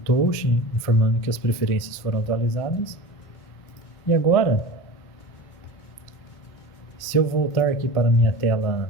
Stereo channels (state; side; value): late; right; 2.1 ms